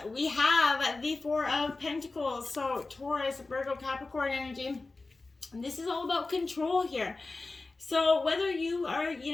we have the Four of Pentacles. So Taurus, Virgo, Capricorn energy. And this is all about control here. So whether you are,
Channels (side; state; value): right; quieter; 3.5 dB